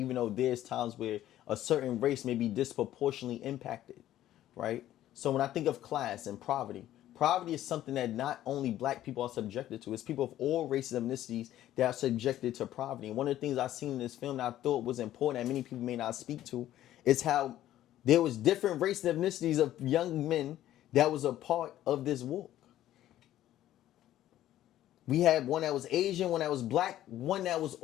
though there's times where a certain race may be disproportionately impacted, right? So when I think of class and poverty, poverty is something that not only black people are subjected to, it's people of all races and ethnicities that are subjected to poverty. And one of the things I've seen in this film that I thought was important that many people may not speak to is how there was different races and ethnicities of young men that was a part of this walk. We had one that was Asian, one that was black, one that was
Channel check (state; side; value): quieter; right; 13.1 dB